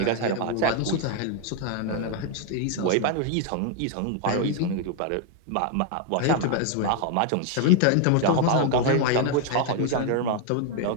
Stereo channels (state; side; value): different; both; correlation 0.00